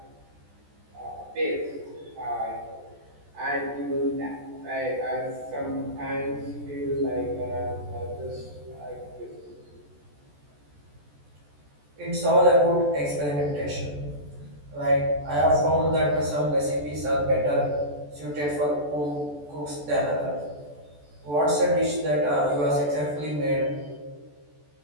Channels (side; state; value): left; late; 14 ms